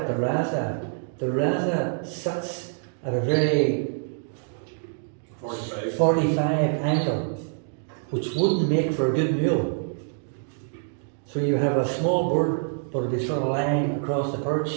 the rasa sits at a very 45 angle, which wouldn't make for a good mule. So you have a small bird, but it'd be sort of lying across the perch,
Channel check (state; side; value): silent; left; digital silence